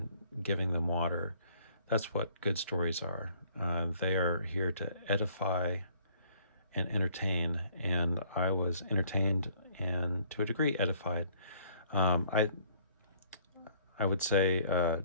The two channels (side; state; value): both; inverted; correlation -0.58